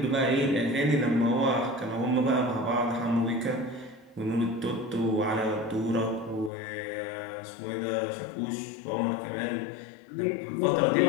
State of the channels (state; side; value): drops out; right; at 6.5 s